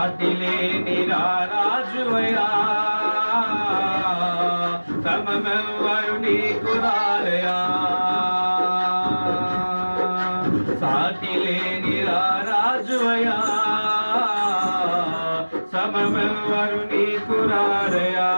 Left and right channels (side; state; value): both; inverted; correlation -1.00